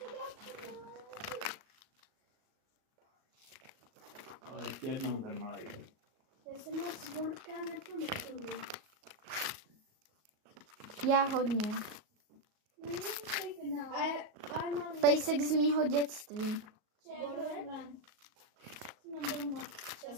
Ale ještě jednou ten malej. Já jsem moc Borka nepamatuju. Já hodně. A mám Pejsek z mýho dětství. Já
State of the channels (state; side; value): late; left; 38 ms